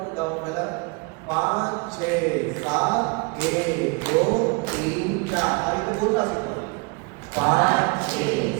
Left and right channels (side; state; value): left; quieter; 29.8 dB